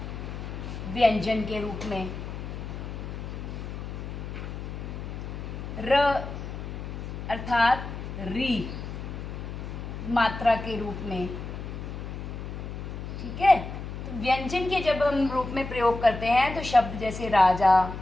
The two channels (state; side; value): noise; left; hum, 8 dB below the sound